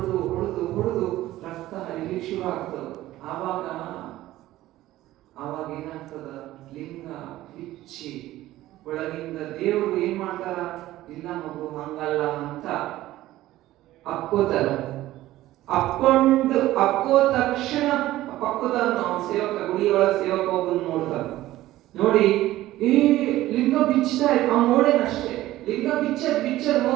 ಹೊಡೆದು ಹೊಡೆದು ರಕ್ತ ಹರಿಲಿಕ್ಕೆ ಶುರು ಆಗ್ತದ. ಆವಾಗ ಏನಾಗ್ತದ? ಲಿಂಗ ಬಿಚ್ಚಿ ಒಳಗಿಂದ ದೇವರು ಏನ್ ಮಾಡ್ತಾರ? ಇಲ್ಲ ಮಗು ಹಂಗಲ್ಲ ಅಂತ ಅಕ್ಕೋತಾರ. ಅಕ್ಕೋ ತಕ್ಷಣ ಪಕ್ಕದ ಸೇವಕ, ಗುಡಿಯೊಳಗ ಸೇವಕ ಒಬ್ಬನ್ ನೋಡ್ತಾರ. ನೋಡಿ ಲಿಂಗ ಬಿಚ್ಚತಾ ಅವ್ ನೋಡೇನಷ್ಟೇ. ಲಿಂಗ ಬಿಚ್ಚರ್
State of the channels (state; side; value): quieter; left; 15.6 dB